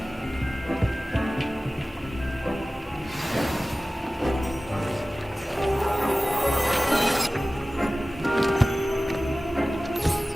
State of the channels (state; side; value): normal; both; correlation 0.97